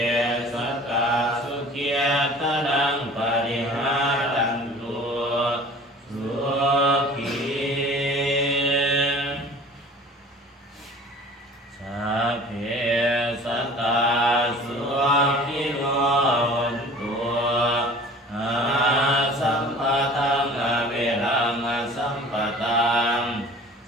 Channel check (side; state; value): both; normal; correlation 0.45